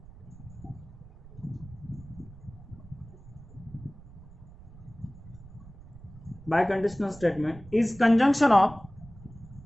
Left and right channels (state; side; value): noise; right; rumble, 19 dB below the sound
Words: Biconditional statement is conjunction of